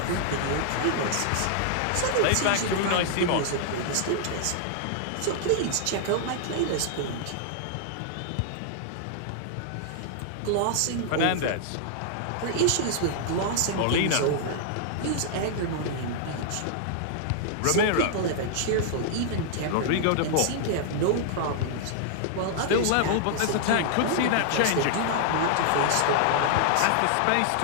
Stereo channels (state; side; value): different; both; correlation -0.01